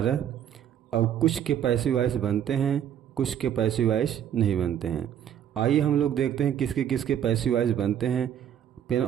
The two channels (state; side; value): quieter; left; 9.7 dB